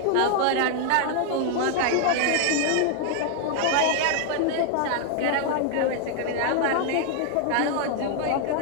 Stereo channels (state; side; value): different; both; correlation 0.00